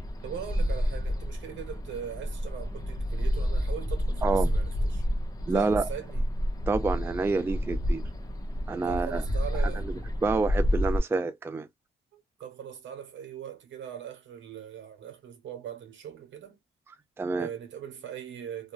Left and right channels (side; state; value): both; normal; correlation 0.86